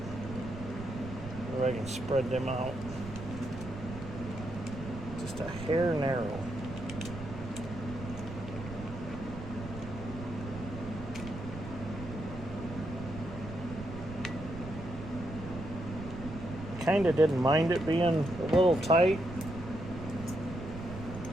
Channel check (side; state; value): right; noise; rumble, 10 dB below the sound